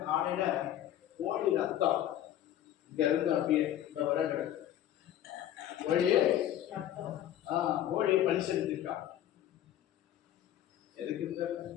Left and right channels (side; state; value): right; quieter; 11.8 dB